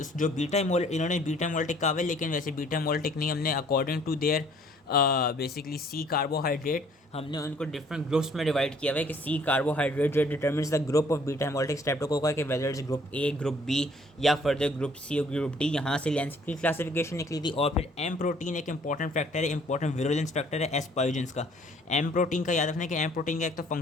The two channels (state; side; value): normal; both; correlation 0.59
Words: जो बीटा इन्होंने बीटा मोल्टिक कहा है, लेकिन वैसे बीटा मोल्टिक नहीं, हमने according to their basically C carbohydrate, हमने उनको डिफरेंट ग्रुप्स में डिवाइड किया हुआ है कि सी कार्बोहाइड्रेट जो determines the group of beta hemolytic streptococci के whether is group A, group B या फर्दर ग्रुप सी और ग्रुप डी। यहाँ से लैंसफील्ड की क्लासिफिकेशन निकली थी। और फिर एम प्रोटीन एक इंपॉर्टेंट फैक्टर है, इंपॉर्टेंट विरुलेंस फैक्टर है एस पायोजेंस का। एम प्रोटीन का याद रखना है कि एम प्रोटीन का एक तो